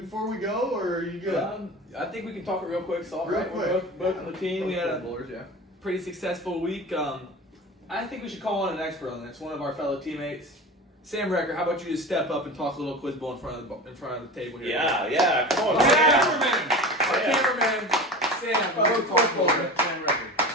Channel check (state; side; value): normal; both; correlation 0.32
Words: we go, or are you good? I think we can talk it real quick. It's all Real right. quick. We're both on the team. We had a Bowlers, yeah. pretty successful week. I think we should call on an expert on this. One of our fellow teammates, Sam Recker. How about you just step up and talk a little quiz bowl in front of the table here? Yeah, come on. Our Sam. cameraman, Sam. Fellow quiz bowler, Sam